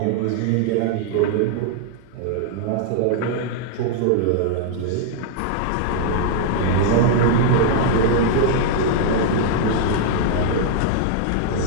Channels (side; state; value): both; different; correlation -0.01